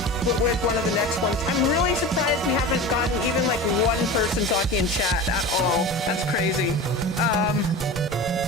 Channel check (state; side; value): normal; both; correlation 0.31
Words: with one of the next ones. I'm really surprised we haven't gotten even like one person talking in chat at all. That's crazy.